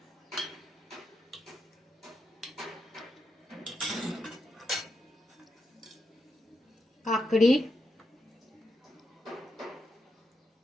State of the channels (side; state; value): both; normal; correlation 0.85